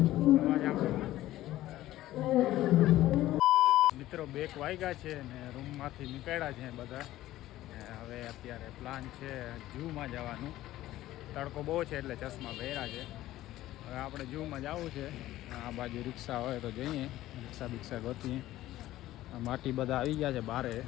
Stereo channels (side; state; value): right; quieter; 15.1 dB